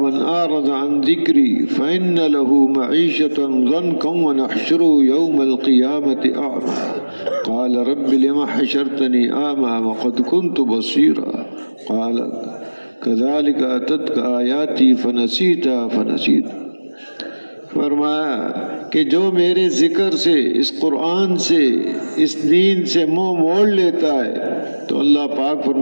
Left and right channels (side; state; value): both; inverted; correlation -1.00